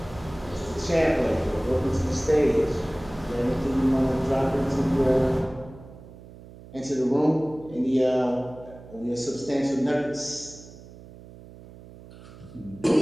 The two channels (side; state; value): right; noise; hum, 18 dB below the sound